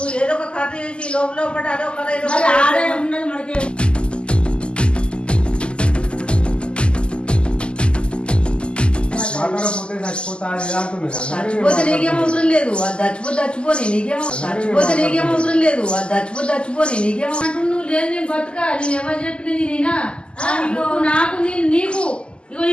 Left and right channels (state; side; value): late; right; 0.051 ms